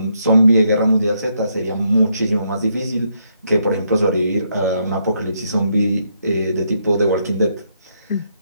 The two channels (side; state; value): both; inverted; correlation -0.76